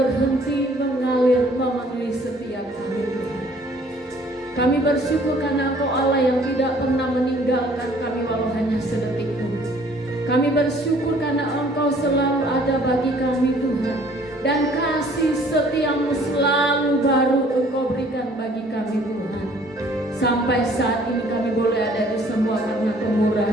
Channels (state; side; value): normal; both; correlation 0.57